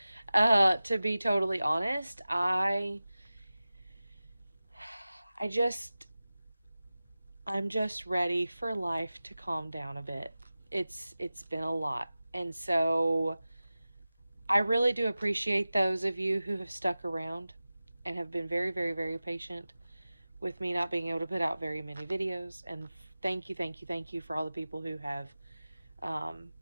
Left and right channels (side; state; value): both; inverted; correlation -0.96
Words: to be totally honest. I just I'm just ready for life to calm down a bit. It's been a lot. And so I really do appreciate those of you who have stuck around and have been very, very, very patient with me not being able to put out very many videos. And thank you, thank you, thank you for all the people who have um,